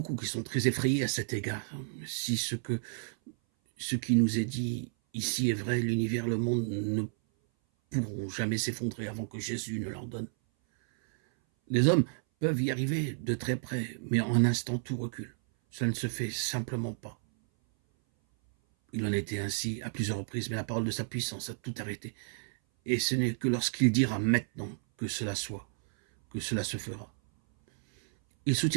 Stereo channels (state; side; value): silent; left; 57 dB below the other